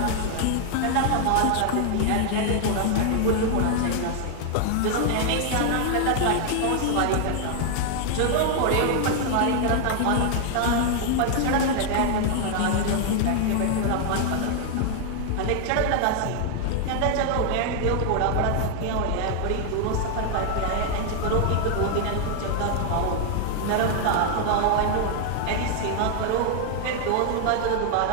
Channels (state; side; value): different; both; correlation 0.00